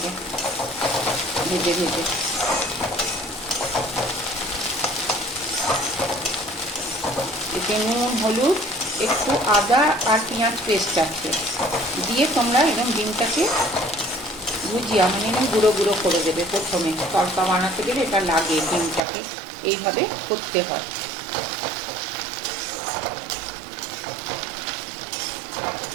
ভেজে ভেজে। এতে নুন হলুদ একটু আদা আর পেঁয়াজ পেস্ট আছে, দিয়ে তোমরা এরকম ডিমটাকে ভুজিয়া মানে এরকম গুঁড়ো গুঁড়ো করে দেবে। প্রথমে তড়কা বানাতে গেলে এটা লাগে, ডিমটাকে এইভাবে করতে হয়।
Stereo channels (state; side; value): drops out; left; at 19.1 s